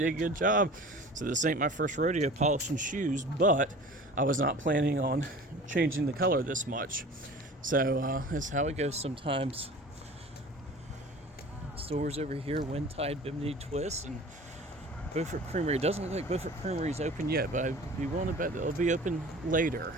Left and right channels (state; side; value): normal; both; correlation 0.41